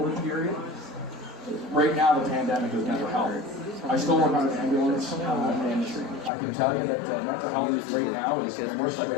period. Right now, the pandemic is mental health. I still work on an ambulance, and I can tell you that mental health right now is the worst I've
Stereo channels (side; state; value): right; drops out; at 6.3 s